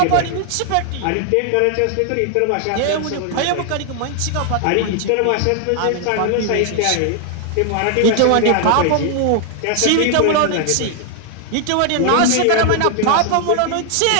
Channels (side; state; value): both; different; correlation 0.00